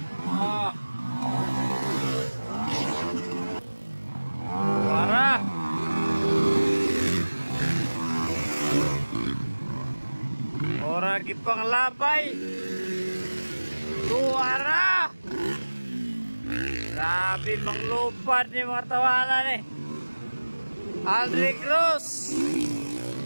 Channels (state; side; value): inverted; both; correlation -1.00